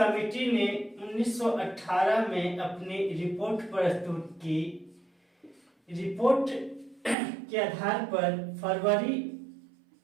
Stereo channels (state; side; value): drops out; left; at 7.2 s